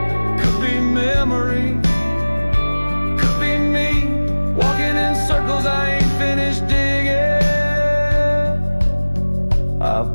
could be memory, could be me walking in circles I ain't finished digging.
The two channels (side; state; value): both; inverted; correlation -1.00